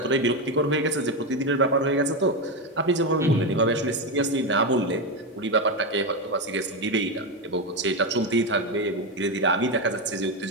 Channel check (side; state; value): both; normal; correlation 0.11